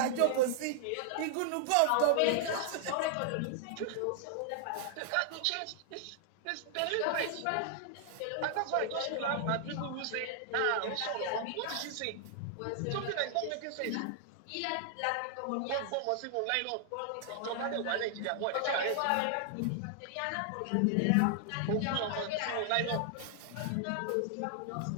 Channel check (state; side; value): different; both; correlation -0.01